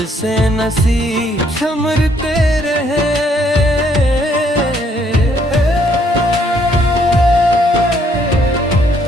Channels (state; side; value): normal; both; correlation 0.68